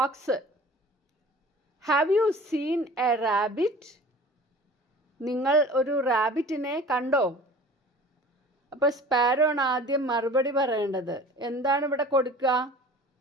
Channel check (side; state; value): both; normal; correlation 0.43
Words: have you seen a rabbit? നിങ്ങൾ ഒരു റാബിറ്റിനെ കണ്ടോ? അപ്പോൾ സ്പാരോ ആണ് ആദ്യം മറുപടി പറയേണ്ടത്. എന്താണ് ഇവിടെ കൊടുക്കുക?